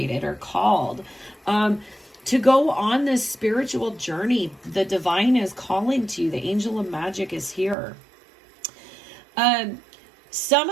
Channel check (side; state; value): left; drops out; at 7.8 s